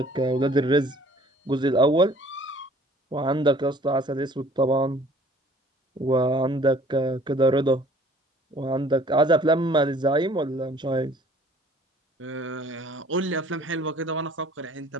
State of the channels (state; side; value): normal; both; correlation 0.54